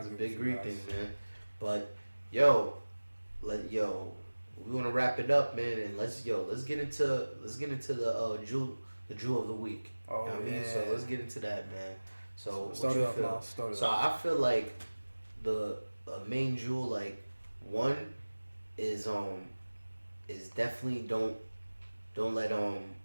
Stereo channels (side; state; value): both; inverted; correlation -1.00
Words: big greed thing, man. But we want to wrap it up, man, and let's get into the jewel of the week. You know what I mean? So let's get into that, man. So what you feel? So I feel like the main jewel, like one, is definitely don't